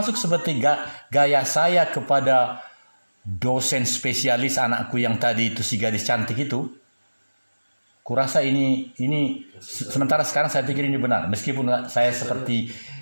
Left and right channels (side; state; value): both; inverted; correlation -1.00